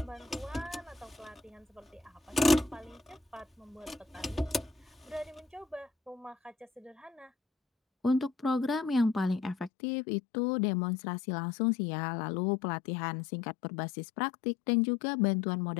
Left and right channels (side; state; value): right; drops out; at 9.7 s